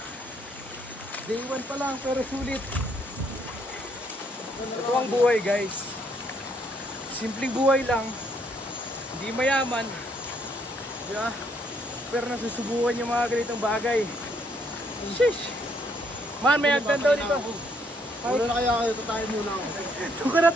Day 1 pa lang, pero sulit. Ito ang buhay, guys. Simpleng buhay lang. Hindi mayaman. Diba? Pero nasusubukan yung mga ganitong bagay. Sheesh. Man, may hagdan daw dito. Muna na kaya kayo, tatayin muna ako. Ito ka na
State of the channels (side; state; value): both; normal; correlation 0.70